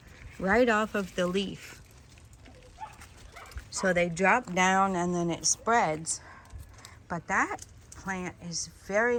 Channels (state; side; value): identical; both; correlation 1.00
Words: right off of the leaf. So they drop down and then it spreads. But that plant is